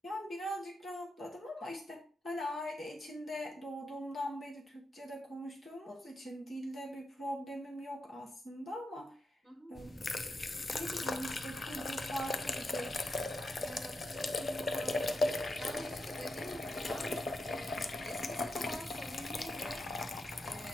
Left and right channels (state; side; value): normal; both; correlation 0.86